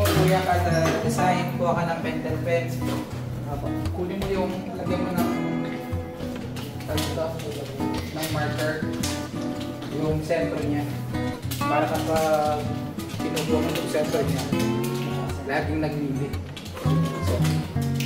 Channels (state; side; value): identical; both; correlation 1.00